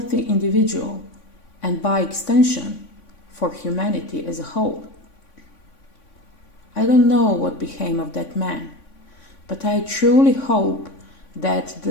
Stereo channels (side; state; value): right; late; 3.5 ms